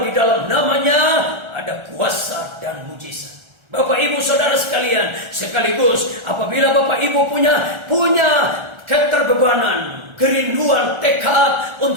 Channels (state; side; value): late; left; 1.3 ms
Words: di dalam namanya ada kuasa dan mujizat. Bapak Ibu Saudara sekalian, sekaligus apabila Bapak Ibu punya keterbebanan, kerinduan, tekad